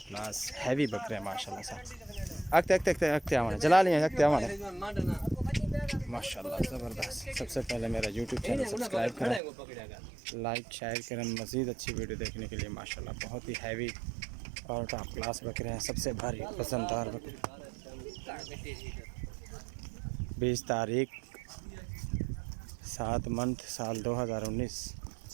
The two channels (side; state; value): left; drops out; at 9.4 s